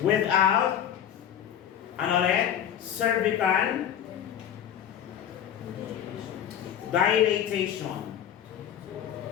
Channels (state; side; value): quieter; right; 9.7 dB